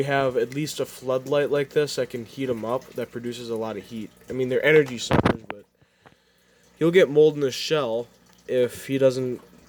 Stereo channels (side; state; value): both; identical; correlation 1.00